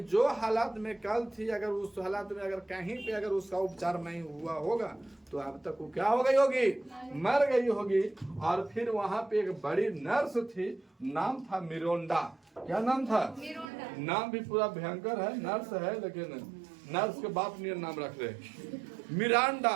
जो हालात में कल थी, अगर उस हालात में अगर कहीं पे अगर उसका उपचार नहीं हुआ होगा तो अब तक वो क्या हो गई होगी, मर गई होगी। और फिर वहां पे एक बड़ी नर्स थी, नाम था मिरोंडा। क्या नाम था? नाम भी पूरा भयंकर है, नर्स है लेकिन नर्स के बाप ने नाम रख रहे, मिरांडा।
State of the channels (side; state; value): left; drops out; at 13.7 s